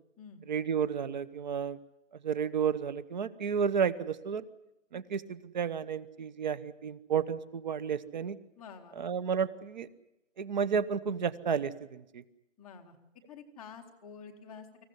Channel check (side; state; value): left; quieter; 6.7 dB